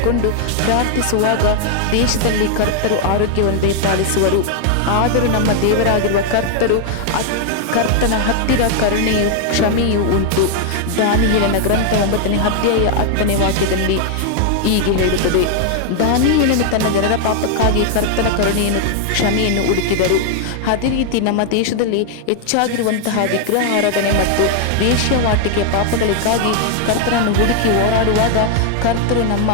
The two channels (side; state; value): both; different; correlation 0.00